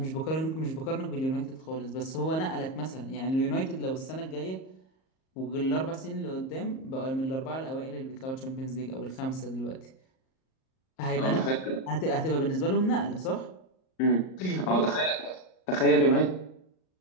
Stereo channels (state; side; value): late; right; 38 ms